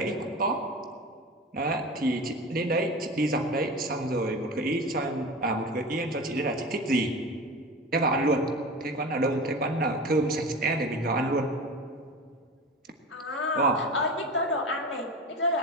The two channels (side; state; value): both; normal; correlation 0.31